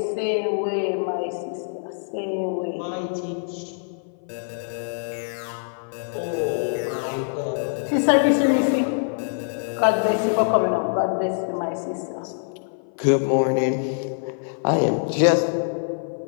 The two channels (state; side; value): silent; right; 57 dB below the other